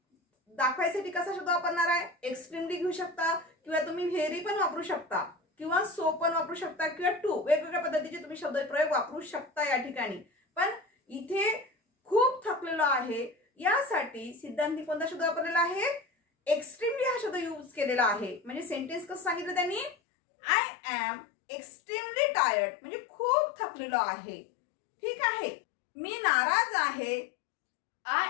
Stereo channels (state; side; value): drops out; right; at 20.0 s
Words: दाखवायसाठी कसा शब्द वापरणार आहे? एक्स्ट्रीमली घेऊ शकता किंवा तुम्ही व्हेरी पण वापरू शकता किंवा सो पण वापरू शकता किंवा टू, वेगवेगळ्या पद्धतीचे तुम्ही शब्दप्रयोग वापरू शकता या ठिकाणी. पण इथे खूप थकलेलो आहे यासाठी सिद्धांतने कोणता शब्द वापरलेला आहे? एक्स्ट्रीमली हा शब्द यूज केलेला आहे. म्हणजे सेंटेन्स कसं सांगितलं त्यांनी? I am extremely tired. म्हणजे खूप थकलेलो आहे. ठीक आहे. मी नाराज आहे. I